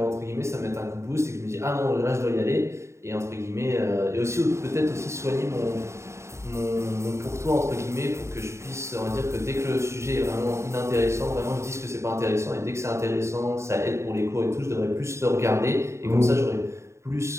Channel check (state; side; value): late; left; 0.14 ms